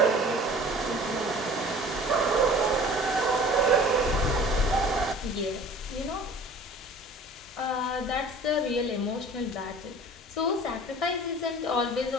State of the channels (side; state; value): both; normal; correlation 0.45